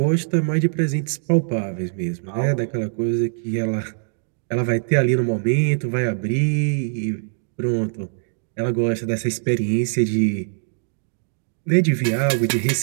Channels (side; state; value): left; silent; digital silence